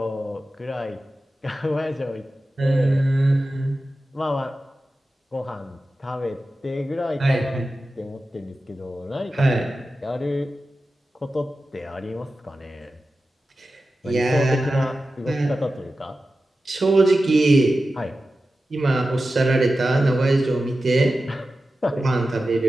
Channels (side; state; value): both; normal; correlation 0.93